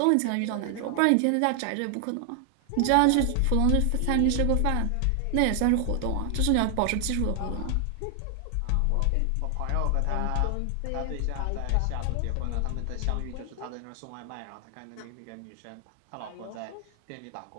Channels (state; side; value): different; both; correlation 0.00